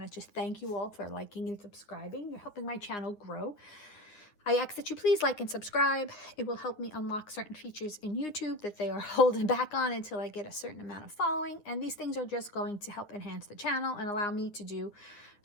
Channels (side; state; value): right; late; 9.9 ms